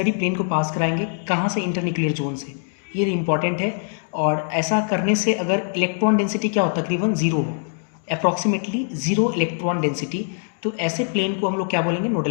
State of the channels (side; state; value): right; silent; digital silence